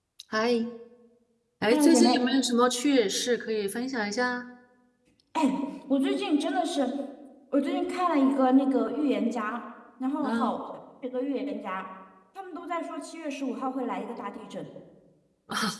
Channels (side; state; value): both; identical; correlation 1.00